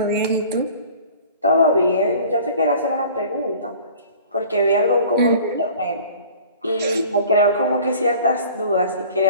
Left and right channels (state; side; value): inverted; both; correlation -0.46